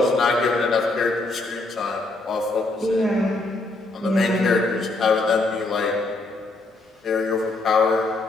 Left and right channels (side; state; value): right; quieter; 3.1 dB